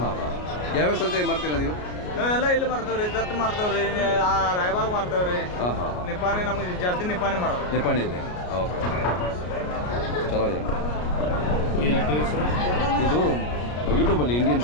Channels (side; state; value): right; late; 33 ms